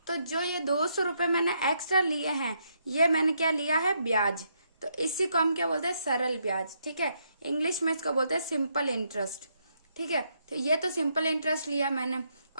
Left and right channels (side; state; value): both; inverted; correlation -0.76